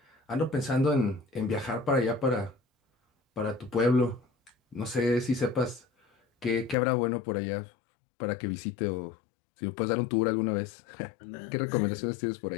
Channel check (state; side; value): drops out; right; at 6.8 s